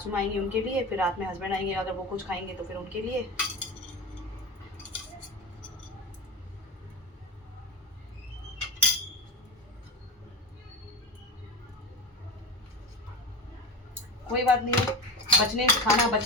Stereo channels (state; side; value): normal; both; correlation 0.25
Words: माँ आएंगी उनके लिए, फिर रात में हस्बैंड आएंगे, अगर वो कुछ खाएंगे तो फिर उनके लिए। कोई बात नहीं है, खाना